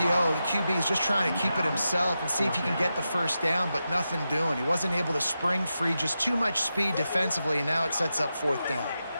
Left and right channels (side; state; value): both; inverted; correlation -0.89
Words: the QB is just trying to keep it himself and see if he can get the first down, but nothing doing. He wasn't able to spring free, just too much speed defensively, and now it sets up 4th down.